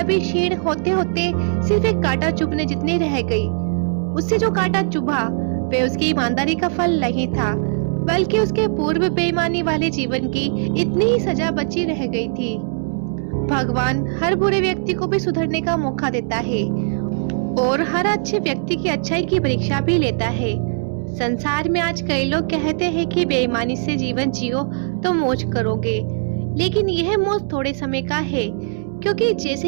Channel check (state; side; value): silent; left; 66 dB below the other